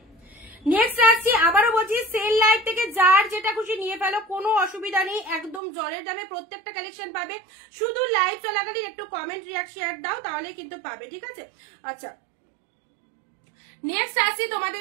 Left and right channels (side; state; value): left; drops out; at 5.6 s